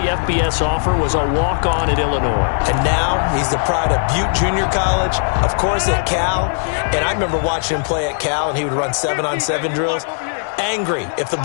FBS offer was a walk-on at Illinois. And now he's the pride of Butte Junior College, of course at Cal. And I remember watching him play at Cal, and he would run 7-on-7 drills. Angry if the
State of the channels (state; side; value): silent; right; digital silence